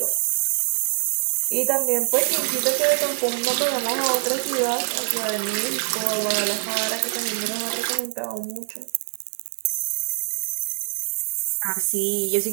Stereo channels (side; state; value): left; silent; digital silence